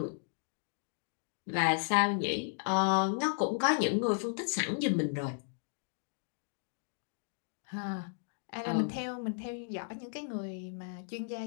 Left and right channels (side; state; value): right; silent; digital silence